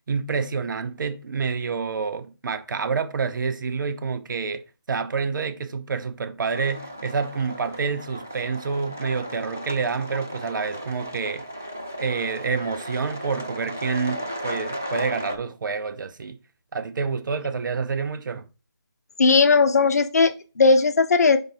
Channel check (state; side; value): inverted; both; correlation -0.54